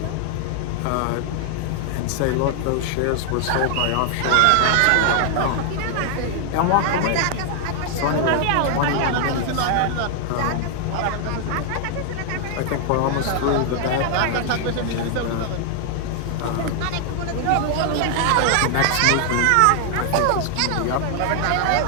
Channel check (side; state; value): both; different; correlation 0.00